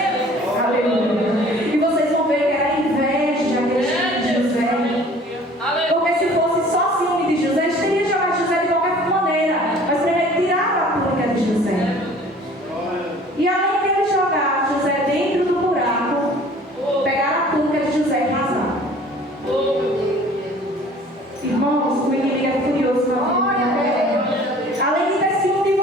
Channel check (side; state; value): both; normal; correlation 0.49